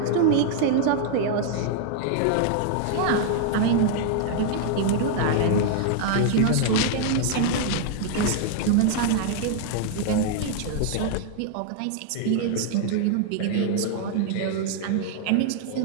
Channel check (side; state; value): both; different; correlation 0.00